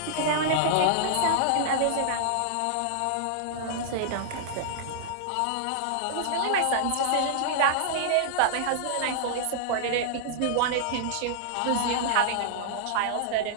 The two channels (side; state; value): both; different; correlation -0.01